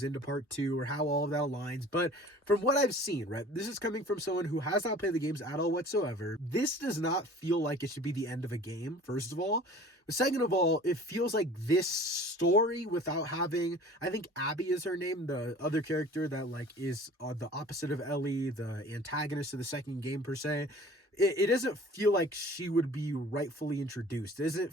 into part 2 or how all of that aligns. But from what I've seen, right, this is coming from someone who has not played the games at all whatsoever. This does not feel like it should be the end of a game, first of all. Second of all, it feels like this story without having, I think Abby is her name, the other character that like is the opposite of Ellie, the antagonist of the second game per se. It doesn't feel like she would be rightfully introduced. It doesn't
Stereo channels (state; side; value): normal; both; correlation 0.45